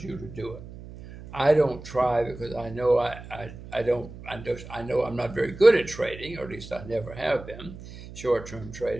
you to do it. I don't try because I know I know I'm not very good at trading, or at least I never have been, short-term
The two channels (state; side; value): noise; right; hum, 14 dB below the sound